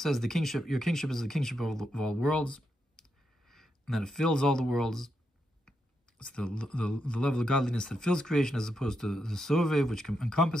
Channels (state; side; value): normal; both; correlation 0.83